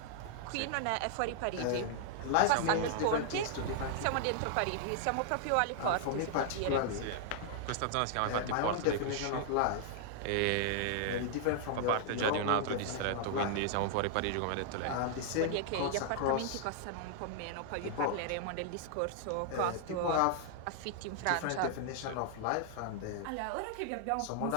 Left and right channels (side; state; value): both; different; correlation -0.01